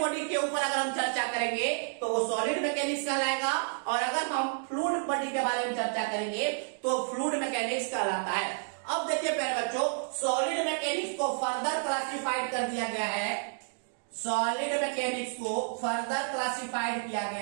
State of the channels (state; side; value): silent; left; digital silence